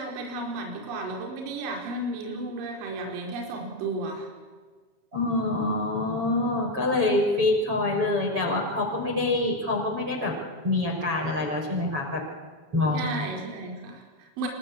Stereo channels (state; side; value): late; left; 7.1 ms